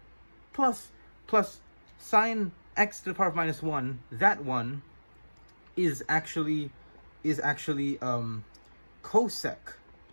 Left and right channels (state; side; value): inverted; both; correlation -1.00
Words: Plus sine x to the power of minus 1, that one is actually cosec